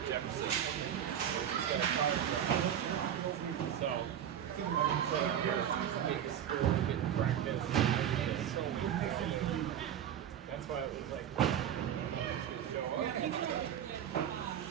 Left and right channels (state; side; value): quieter; left; 9.7 dB